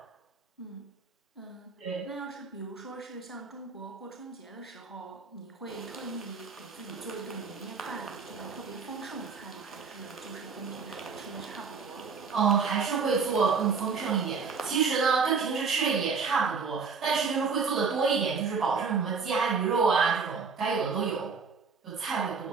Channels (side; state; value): left; quieter; 5.2 dB